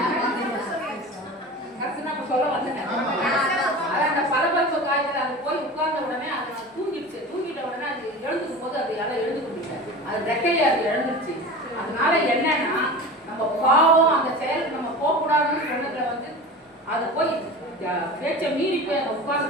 கரெக்ட் நான் சொல்ல வந்தேன். அதான் அந்த பரபரப்பு காய்ச்சல் அது போய் உட்கார்ந்த உடனே அது தூங்கிடுச்சு. தூங்கிட்ட உடனே அது எழுந்துக்கும் போது அது யாரும் எழுந்து கொண்டுட்டேன். அது ரெக்கையை அது எழுந்துருச்சு. அதனால என்னன்னா நம்ம பாவம் அந்த செயலுக்கு நம்ம போகக்கூடாதுன்னு சொன்னதுல வந்து அது போய் பேச்சை மீறி போய் அந்த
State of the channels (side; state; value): both; normal; correlation 0.33